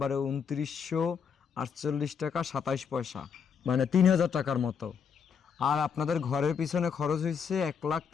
2948 টাকা 27 পয়সা, মানে 3000 টাকার মতো। আর আপনাদের ঘরের পিছনে খরচ হয়েছে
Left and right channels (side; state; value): right; quieter; 6.8 dB